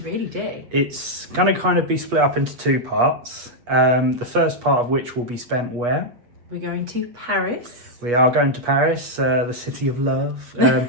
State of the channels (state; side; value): late; left; 8.3 ms